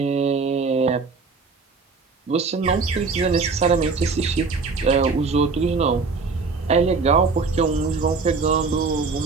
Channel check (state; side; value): quieter; left; 4.5 dB